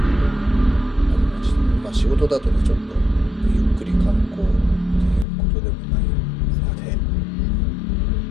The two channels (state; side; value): drops out; right; at 5.2 s